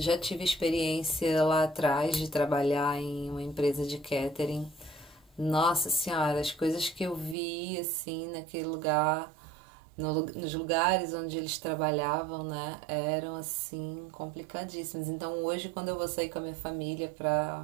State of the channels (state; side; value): drops out; left; at 7.4 s